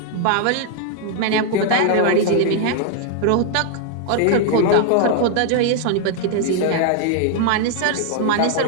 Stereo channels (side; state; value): both; different; correlation 0.00